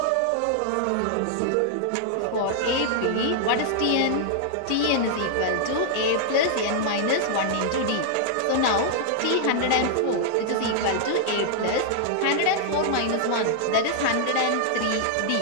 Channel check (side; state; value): both; different; correlation -0.01